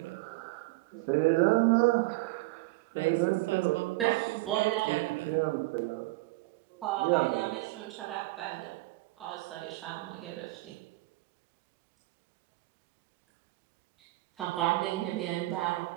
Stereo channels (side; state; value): left; quieter; 20.7 dB